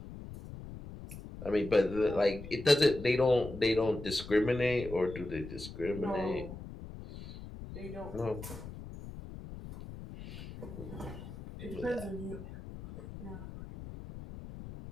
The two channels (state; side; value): noise; left; rumble, 12 dB below the sound